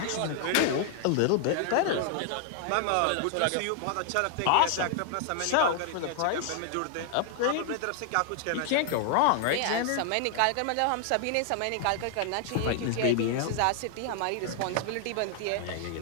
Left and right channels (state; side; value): different; both; correlation 0.00